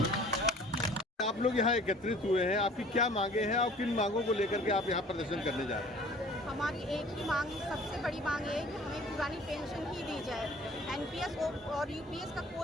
आप लोग यहाँ एकत्रित हुए हैं, आपकी क्या मांगे हैं और किन मांगों को लेकर के आप यहाँ प्रदर्शन करने जा रहे हैं? हमारी एक ही मांग, सबसे बड़ी मांग है कि हमें पुरानी पेंशन ही दी जाए। एनपीएस और यूपीएस का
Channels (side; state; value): both; normal; correlation 0.50